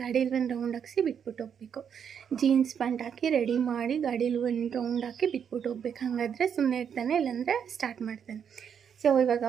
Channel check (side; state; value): left; quieter; 7.7 dB